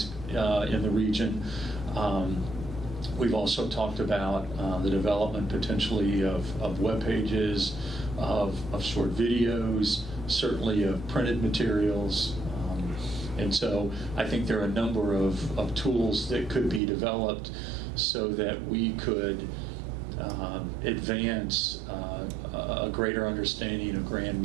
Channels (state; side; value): drops out; left; at 16.8 s